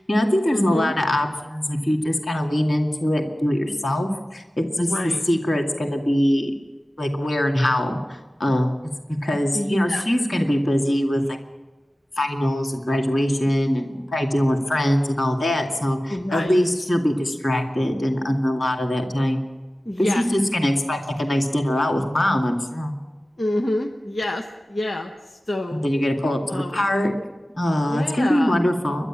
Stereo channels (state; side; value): normal; both; correlation 0.96